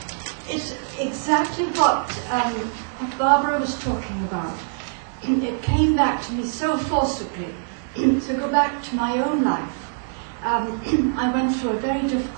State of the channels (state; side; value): silent; left; 63 dB below the other